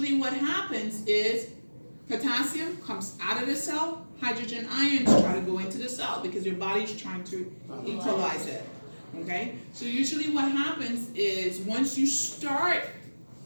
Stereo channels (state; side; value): inverted; both; correlation -1.00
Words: what happens is potassium comes out of the cell, hydrogen ions try to go into the cell because your body's trying to equalize it. Okay? So usually what happens is once you start